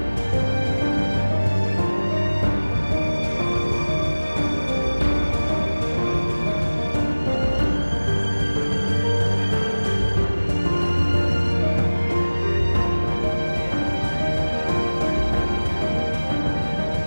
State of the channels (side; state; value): both; inverted; correlation -1.00